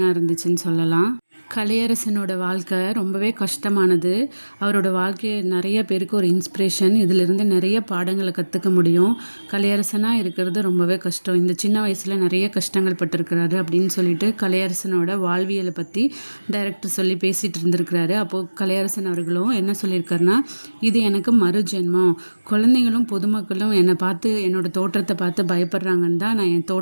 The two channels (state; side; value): inverted; both; correlation -1.00